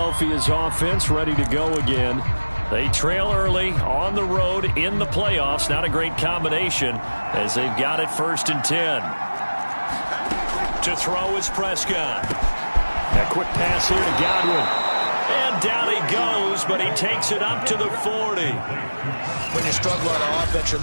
offense ready to go again. They trail early on the road in the playoffs. Not a great combination as they've got it 1st and 10. To throw is Prescott. A quick pass here to Godwin. And down he goes, but he takes it up to the 40. When you struggle on offense, you're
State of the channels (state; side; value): inverted; both; correlation -1.00